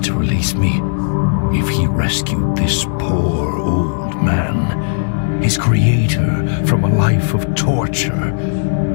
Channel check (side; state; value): right; silent; digital silence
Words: to release me. If he rescued this poor old man, his creator, from a life of torture,